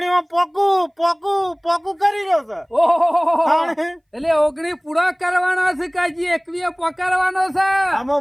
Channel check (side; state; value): both; identical; correlation 1.00